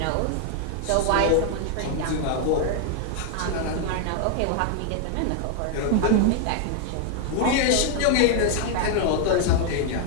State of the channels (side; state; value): both; different; correlation 0.00